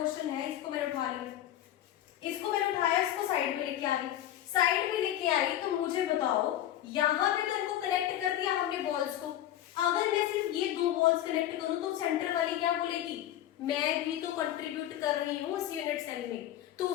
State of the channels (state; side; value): quieter; right; 12.3 dB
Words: है इसको मैंने उठा लिया, इसको मैंने उठाया, इसको साइड में लेके आ गई। साइड में लेके आई तो मुझे बताओ यहाँ पे तो इनको कनेक्ट कर दिया हमने बॉल्स को। अगर मैं सिर्फ ये दो बॉल्स कनेक्ट करूं तो सेंटर वाली क्या बोलेगी, मैं भी तो कंट्रीब्यूट कर रही हूँ उस यूनिट सेल में, तो